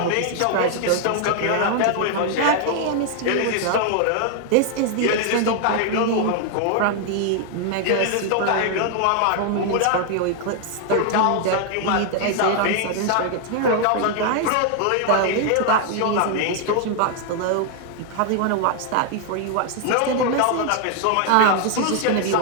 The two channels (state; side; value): different; both; correlation 0.00